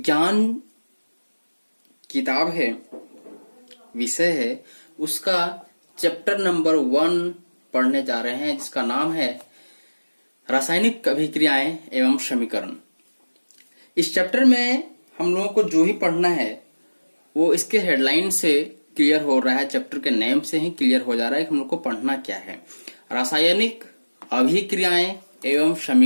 किताब है, विषय है, उसका चैप्टर नंबर 1 पढ़ने जा रहे हैं, जिसका नाम है रासायनिक अभिक्रियाएं एवं समीकरण। इस चैप्टर में हम लोगों को जो ही पढ़ना है वो इसके हेडलाइन से क्लियर हो रहा है, चैप्टर के नेम से ही क्लियर हो जा रहा है कि हम लोग को पढ़ना क्या है। रासायनिक अभिक्रियाएं एवं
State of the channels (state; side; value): inverted; both; correlation -1.00